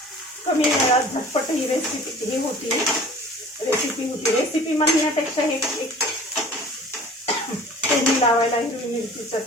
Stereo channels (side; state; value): both; normal; correlation 0.45